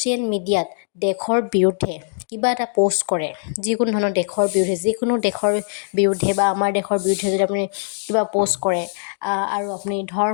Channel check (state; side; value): silent; right; digital silence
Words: মিডিয়াত দেশৰ বিৰুদ্ধে কিবা এটা প'ষ্ট কৰে, যিকোনো ধৰণৰ দেশৰ বিৰুদ্ধে বা আমাৰ দেশৰ বিৰুদ্ধে যদি আপুনি কিবা প'ষ্ট কৰে, আৰু আপুনি